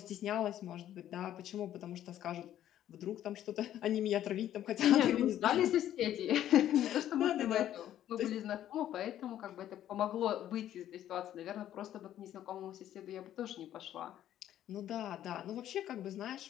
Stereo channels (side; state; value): right; quieter; 11.7 dB